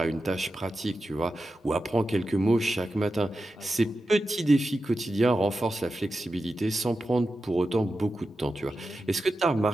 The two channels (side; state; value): both; normal; correlation 0.91